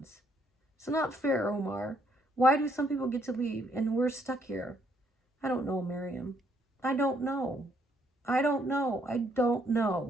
It's not fair, Omar. Why do some people get to leave and we're stuck here? I don't know, Miriam. I don't know. I don't know. I don't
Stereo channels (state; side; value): normal; both; correlation 0.70